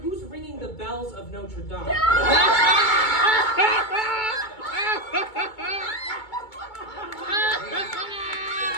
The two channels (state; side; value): late; right; 2.2 ms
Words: ringing the bells of Notre Dame? Oh